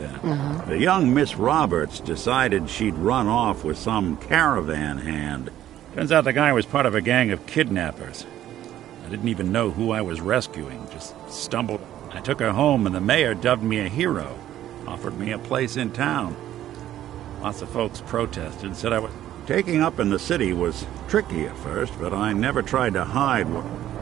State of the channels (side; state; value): left; quieter; 12.4 dB